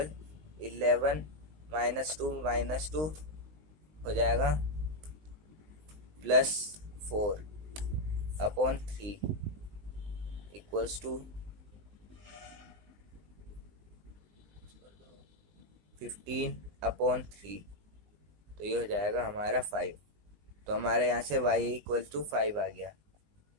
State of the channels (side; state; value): left; late; 20 ms